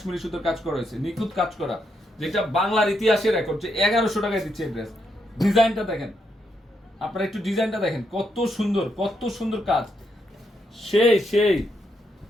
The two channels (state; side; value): normal; both; correlation 0.79